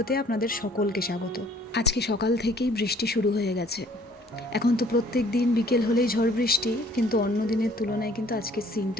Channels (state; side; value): normal; both; correlation 0.58